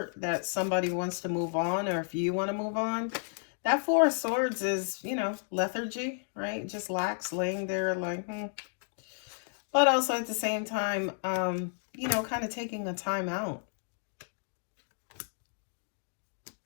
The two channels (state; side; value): silent; right; digital silence